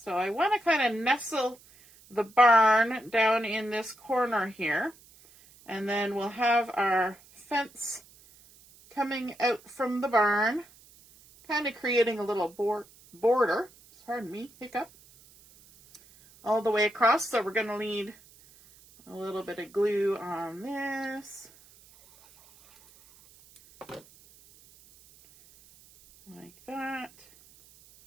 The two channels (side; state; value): right; noise; hiss, 26 dB below the sound